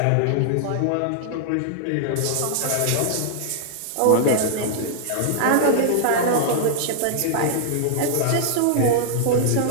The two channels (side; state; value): both; different; correlation -0.01